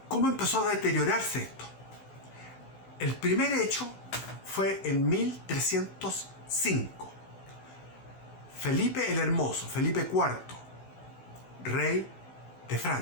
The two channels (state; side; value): late; right; 16 ms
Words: ¿cómo empezó a deteriorarse esto? El primer hecho fue en 1305. Felipe el Hermoso, Felipe IV, rey de